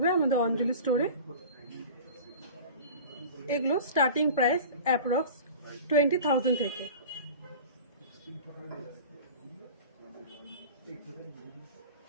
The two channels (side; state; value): both; inverted; correlation -0.37